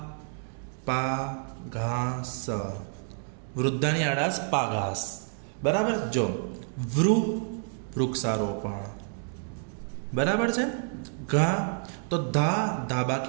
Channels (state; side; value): silent; left; 59 dB below the other